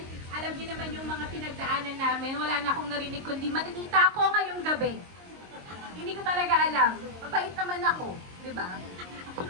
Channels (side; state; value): left; late; 22 ms